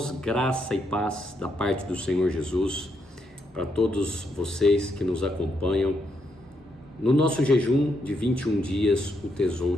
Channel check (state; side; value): normal; both; correlation 0.78